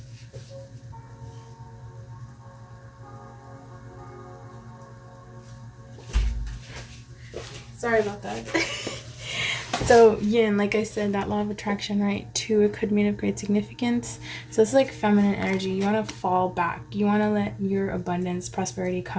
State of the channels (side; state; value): both; identical; correlation 1.00